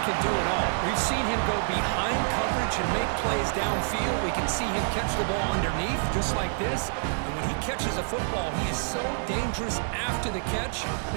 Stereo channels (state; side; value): silent; left; digital silence